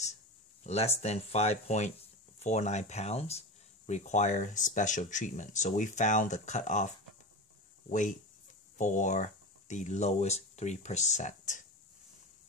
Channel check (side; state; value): both; normal; correlation 0.25